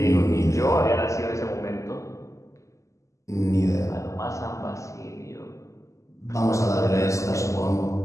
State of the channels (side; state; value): right; late; 0.15 ms